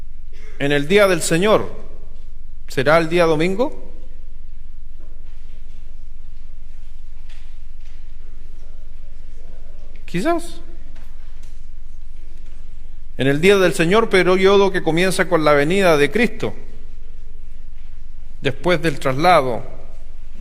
En el día del Señor, ¿será el día domingo? Quizás. En el día del Señor, periodo que comienza con la venida de Cristo, después del traslado,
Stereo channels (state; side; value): identical; both; correlation 1.00